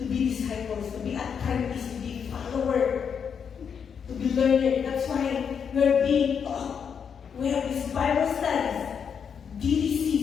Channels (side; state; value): right; quieter; 7.0 dB